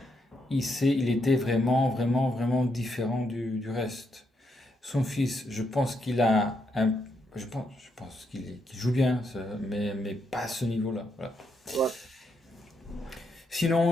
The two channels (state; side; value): normal; both; correlation 0.79